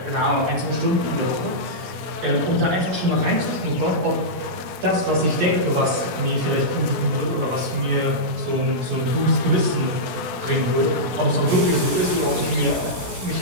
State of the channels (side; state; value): left; late; 17 ms